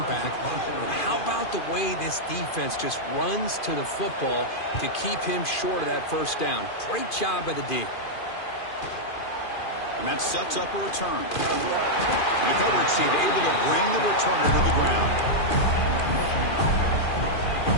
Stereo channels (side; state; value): right; late; 2.4 ms